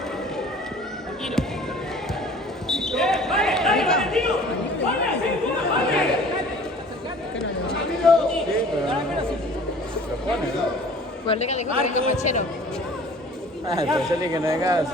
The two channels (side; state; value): both; normal; correlation 0.48